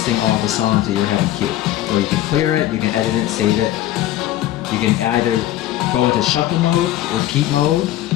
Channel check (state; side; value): quieter; right; 13.6 dB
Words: all the songs that you're having queued. So you can clear it, you can edit it, save it. You can either go into shuffle mode, repeat mode.